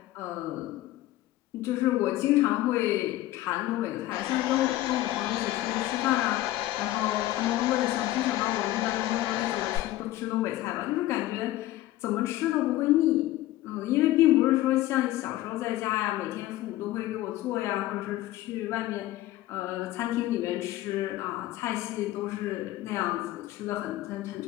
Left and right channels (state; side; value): quieter; right; 15.6 dB